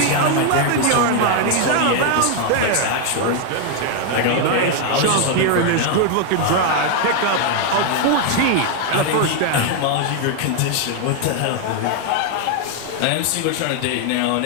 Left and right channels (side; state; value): both; different; correlation 0.00